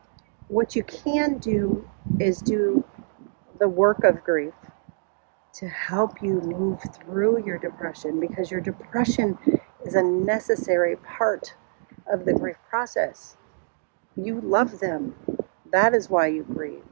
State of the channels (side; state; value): left; silent; digital silence